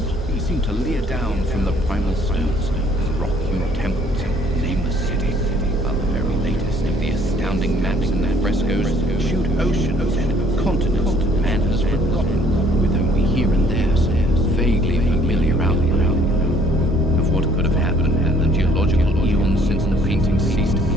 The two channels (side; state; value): both; normal; correlation 0.60